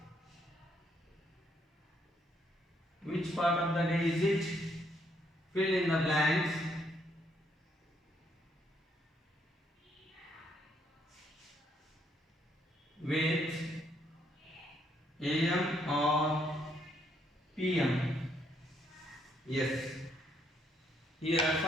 Which part of the day is it? Fill in the blanks with AM or PM. Yes. Here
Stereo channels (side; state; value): both; normal; correlation 0.72